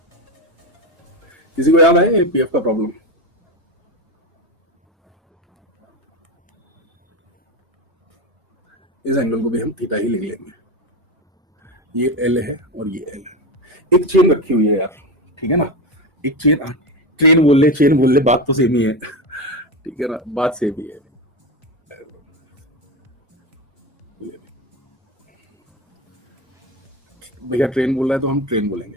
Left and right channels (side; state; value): both; normal; correlation 0.19